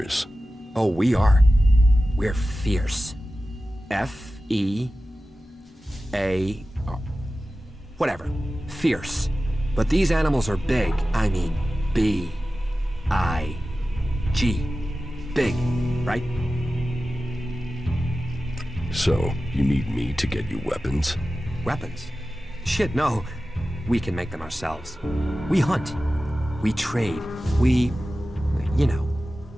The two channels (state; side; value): normal; both; correlation 0.94